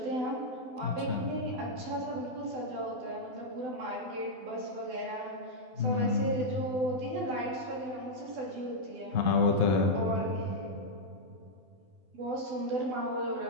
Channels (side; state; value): left; late; 12 ms